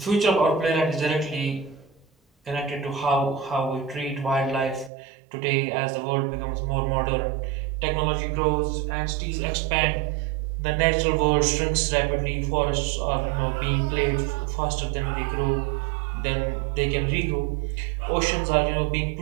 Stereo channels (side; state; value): left; drops out; at 4.9 s